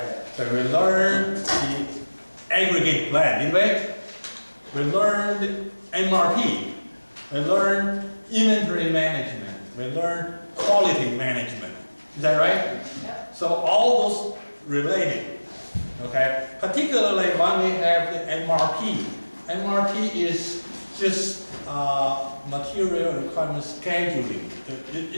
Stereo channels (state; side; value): inverted; both; correlation -1.00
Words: So we learned the aggregate plan, did we? We learned MRP. We learned inventory management. We learned quality management. Is that right? Yeah. So all those related, okay? Particularly when we have the MRP. MRP is just material requirement scheduling.